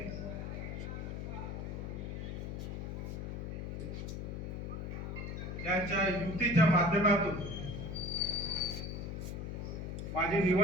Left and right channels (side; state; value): left; noise; hum, 5 dB below the sound